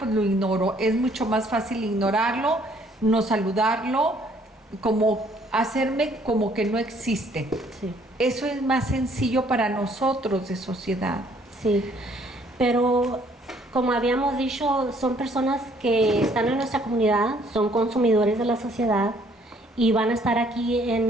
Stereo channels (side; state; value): both; normal; correlation 0.63